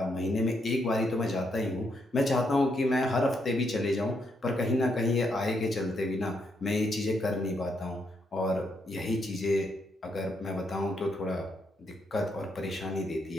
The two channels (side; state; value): both; normal; correlation 0.78